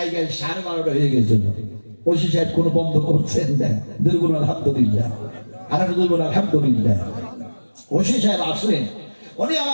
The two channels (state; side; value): inverted; both; correlation -1.00